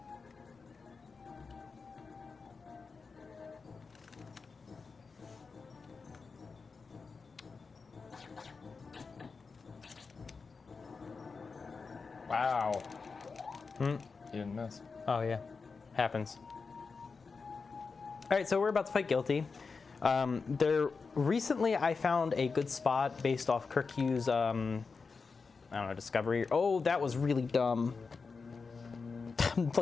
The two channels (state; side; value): quieter; right; 4.7 dB